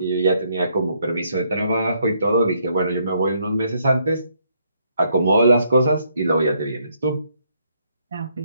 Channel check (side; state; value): both; inverted; correlation -0.72